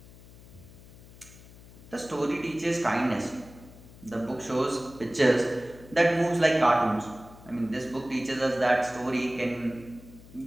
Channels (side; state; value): left; noise; hum, 20 dB below the sound